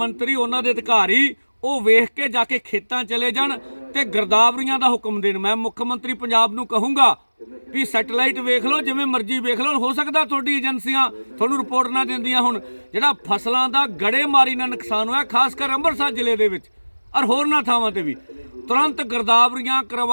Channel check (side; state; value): both; inverted; correlation -1.00